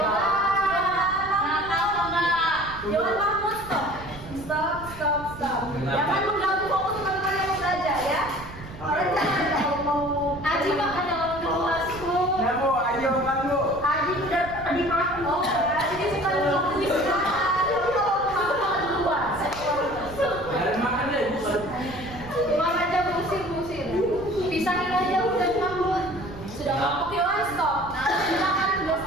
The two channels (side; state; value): right; noise; rumble, 15 dB below the sound